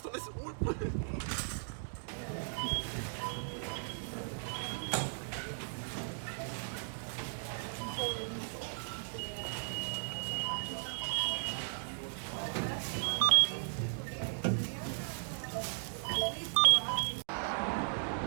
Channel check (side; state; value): left; silent; digital silence